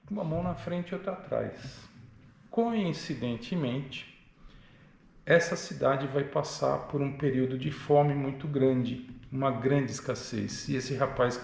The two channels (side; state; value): both; identical; correlation 1.00